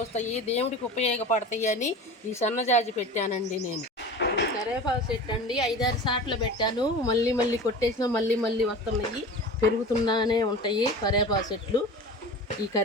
దేవుడికి ఉపయోగపడతాయి అని ఈ సన్నజాజి పెట్టానండి నేను. ఇది కరివేపాకు చెట్టు అండి. 5-6 సార్లు పెట్టాను. మళ్ళీ కొట్టేసినా మళ్ళీ వస్తున్నాయి, పెరుగుతున్నానే ఉంటాయి కరివేపాకు చెట్లు. ఈ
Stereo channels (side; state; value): both; normal; correlation 0.35